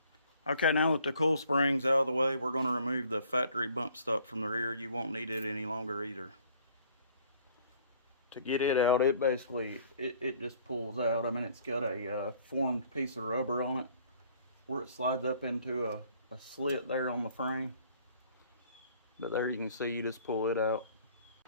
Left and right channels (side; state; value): both; inverted; correlation -0.58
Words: Okay, now that the coil spring's out of the way, we're going to remove the factory bump stop from the rear. You won't need it any longer either. To get it out, it basically, it just pulls out. I mean, it's got a formed piece of rubber on it where it slides up into a slit there on the frame. But there you can see, you just pull it out.